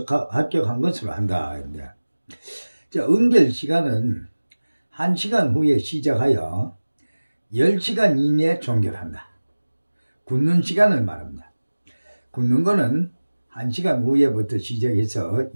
합격한 것으로 한다. 자, 응결 시간은 1시간 후에 시작하여 10시간 이내에 종결한다. 굳는 시간을 말합니다. 굳는 거는 1시간 후에부터 시작해서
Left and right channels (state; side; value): inverted; both; correlation -1.00